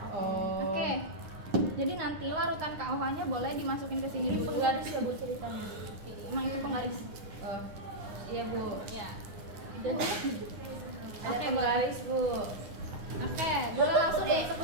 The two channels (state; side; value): late; left; 9.8 ms